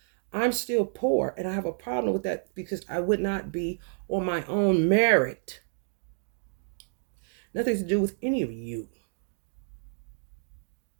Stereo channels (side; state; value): left; silent; digital silence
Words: I'm still poor, and I have a problem with that because I would not be on my own merit. Nothing to do with any of you.